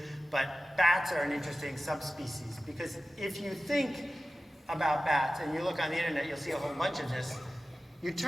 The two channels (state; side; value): normal; both; correlation 0.95